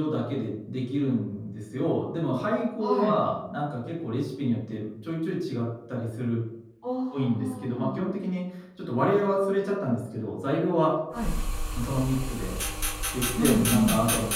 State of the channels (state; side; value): identical; both; correlation 1.00